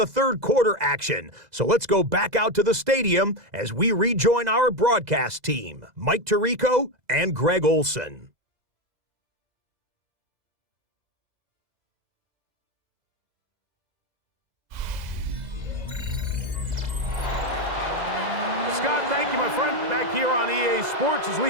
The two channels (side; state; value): left; late; 2.0 ms